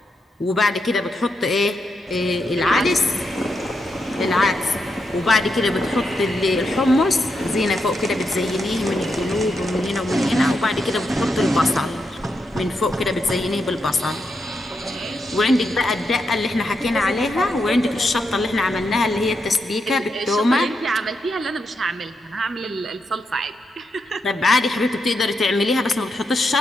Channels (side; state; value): both; normal; correlation 0.83